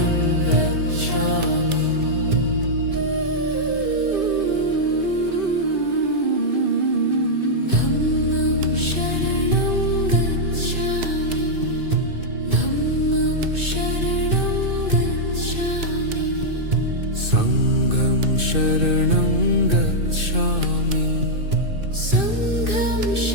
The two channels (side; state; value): left; late; 2.6 ms